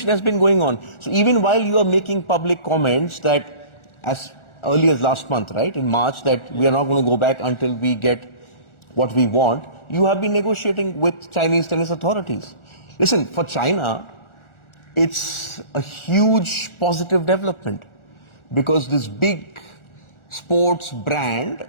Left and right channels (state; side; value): late; right; 1.4 ms